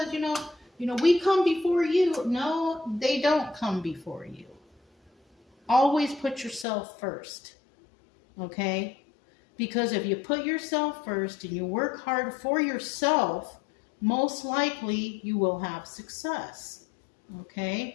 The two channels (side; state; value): right; drops out; at 6.7 s